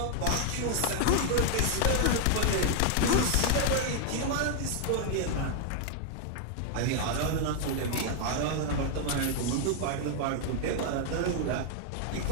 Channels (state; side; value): different; both; correlation 0.00